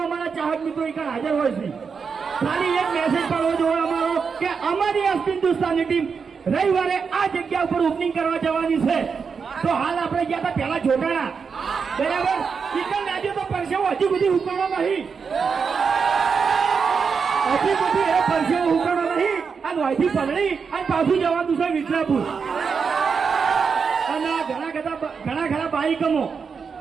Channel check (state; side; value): quieter; left; 5.7 dB